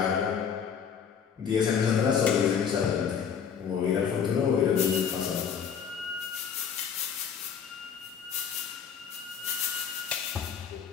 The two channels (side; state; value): right; quieter; 7.3 dB